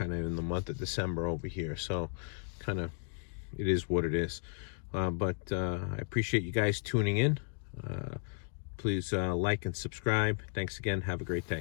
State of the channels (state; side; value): silent; right; 55 dB below the other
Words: of in the month of December over here, so kind of it is what it is. But I appreciate you guys tuning in. Please like and subscribe. Thanks again. Have a great